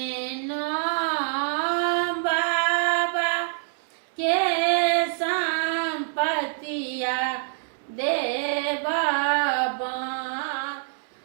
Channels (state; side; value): silent; left; digital silence